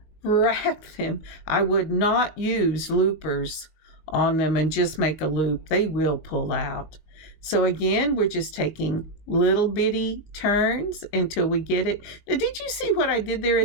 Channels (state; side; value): late; right; 19 ms